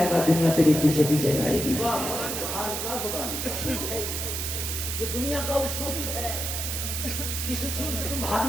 گا دنیا تیرے پیچھے پیچھے جائے گی. یہ دنیا کا اصول ہے. اس اصول سے تم بھاگ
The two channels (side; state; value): right; noise; hiss, 3 dB below the sound